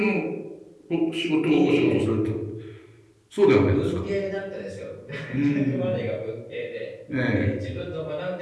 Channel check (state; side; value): identical; both; correlation 1.00